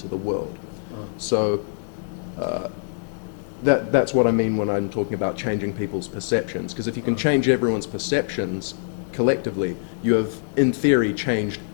the world. So that's what I mean when I'm talking about changing people's perceptions. Because if you can change everyone's perceptions collectively, you have, in theory, changed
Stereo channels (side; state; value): right; silent; digital silence